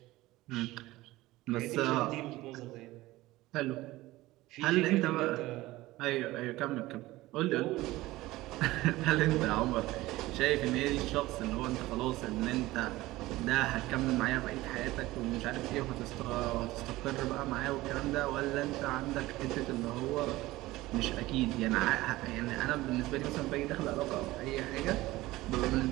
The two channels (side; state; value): left; quieter; 18.2 dB